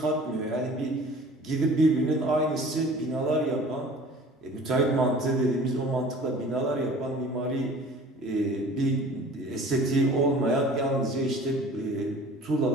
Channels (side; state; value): both; normal; correlation 0.46